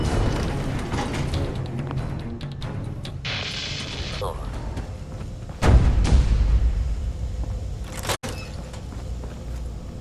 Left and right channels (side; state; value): both; identical; correlation 1.00